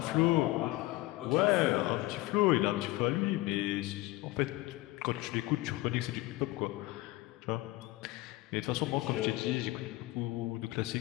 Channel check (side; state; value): right; quieter; 19.1 dB